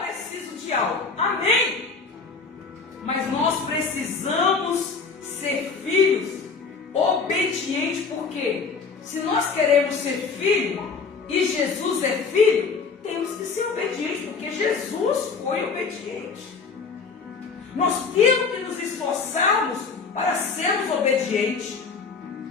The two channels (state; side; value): quieter; right; 4.9 dB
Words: preciso de algo. Amém? Mas nós precisamos ser filhos obedientes, porque se nós queremos ser filho e Jesus é filho, temos que ser obedientes, porque Jesus foi obediente. Nós temos que nos esforçarmos para sermos obedientes.